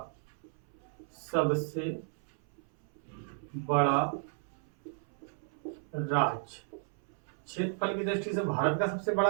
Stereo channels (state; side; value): silent; left; 56 dB below the other